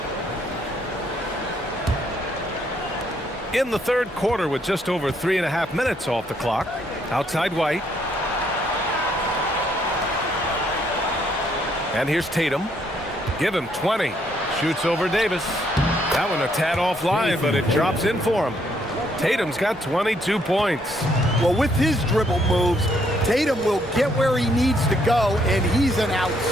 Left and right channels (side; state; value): both; normal; correlation 0.70